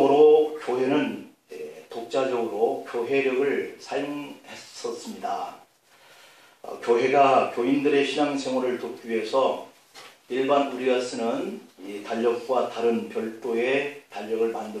교회는 독자적으로 교회력을 사용했었습니다. 교회가 교인들의 신앙생활을 돕기 위해서 일반 우리가 쓰는 이 달력과 다른 별도의 달력을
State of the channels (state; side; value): identical; both; correlation 1.00